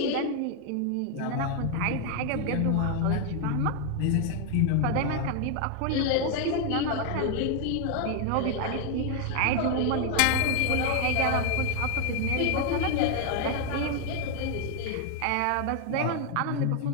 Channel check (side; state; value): both; different; correlation 0.01